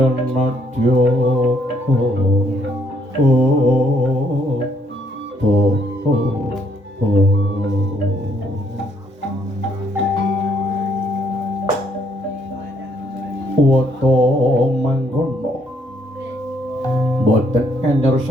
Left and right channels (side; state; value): both; normal; correlation 0.70